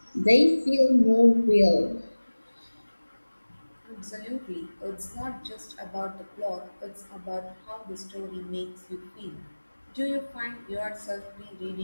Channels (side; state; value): both; inverted; correlation -1.00